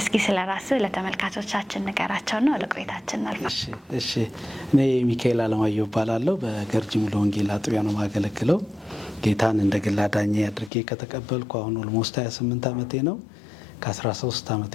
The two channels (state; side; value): drops out; right; at 10.7 s